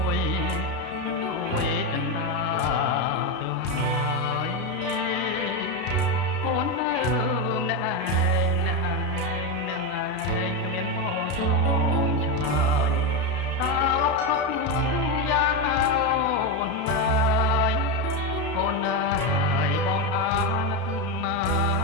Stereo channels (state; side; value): late; right; 32 ms